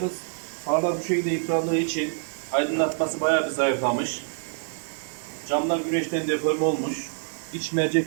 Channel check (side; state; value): left; silent; 57 dB below the other